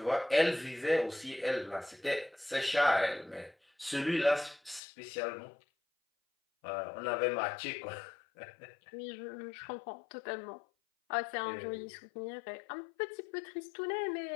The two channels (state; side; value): drops out; right; at 4.8 s